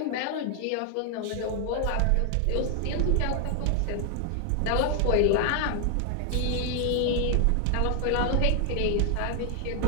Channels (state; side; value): different; both; correlation 0.00